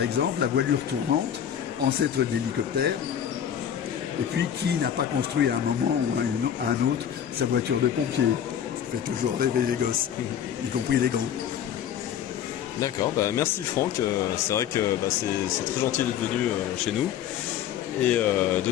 la voilure tournante, ancêtre de l'hélicoptère, et puis qui n'a pas construit à un moment ou à un autre sa voiture de pompier. Ça fait toujours rêver les gosses, y compris les grands. D'accord, merci Franck, c'est vrai que c'est très gentil d'être venu chez nous et de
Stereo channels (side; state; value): right; quieter; 9.4 dB